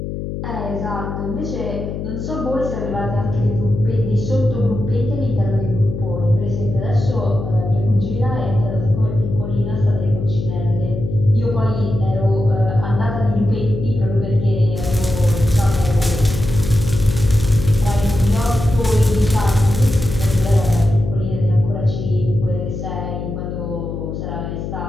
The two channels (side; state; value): left; noise; hum, 6 dB below the sound